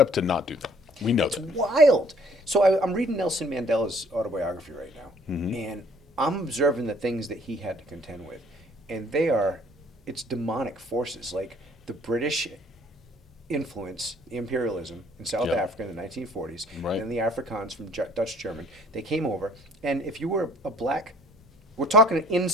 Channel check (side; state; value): both; normal; correlation 0.58